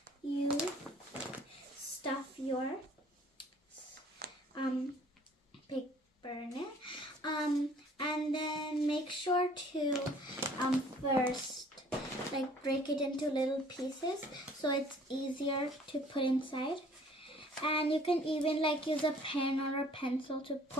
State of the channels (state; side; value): normal; both; correlation 0.55